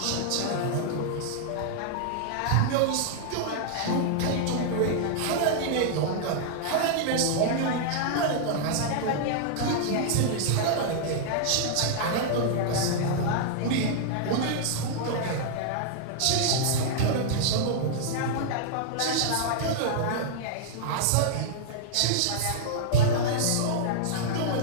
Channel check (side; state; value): both; different; correlation -0.01